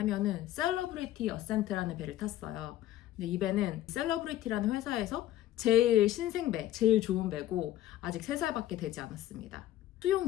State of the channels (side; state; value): right; quieter; 13.3 dB